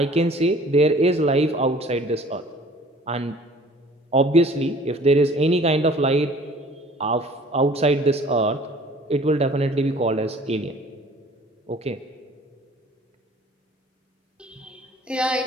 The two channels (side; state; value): both; normal; correlation 0.50